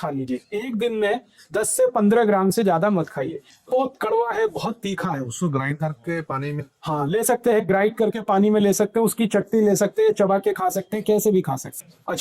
लीजिए। एक दिन में 10 से 15 ग्राम से ज्यादा मत खाइए। बहुत कड़वा है, बहुत तीखा है। उसको ग्राइंड करके पानी में, हाँ, ले सकते हैं, ग्राइंड करके पानी में ले सकते हैं, उसकी चटनी ले सकते हैं, चबा के खा सकते हैं, कैसे भी खा सकते हैं।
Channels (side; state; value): both; identical; correlation 1.00